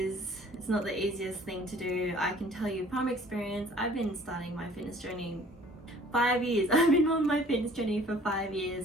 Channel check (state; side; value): normal; both; correlation 0.52